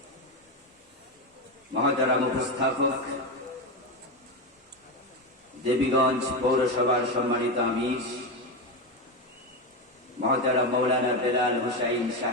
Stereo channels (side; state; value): both; normal; correlation 0.14